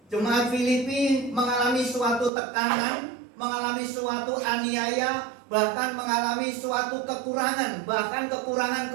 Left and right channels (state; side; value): drops out; left; at 2.3 s